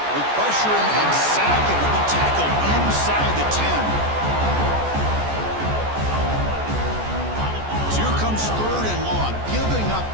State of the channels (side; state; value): left; late; 14 ms